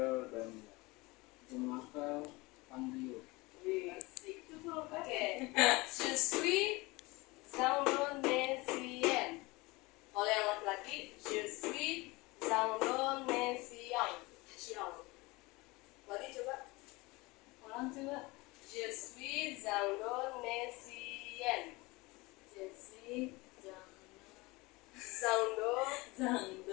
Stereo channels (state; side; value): quieter; right; 23.4 dB